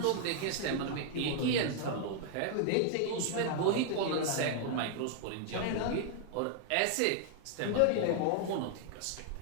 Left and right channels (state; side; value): different; both; correlation 0.00